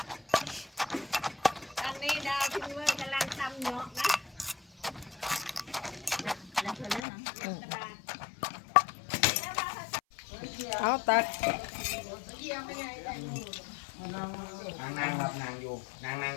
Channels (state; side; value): drops out; right; at 7.1 s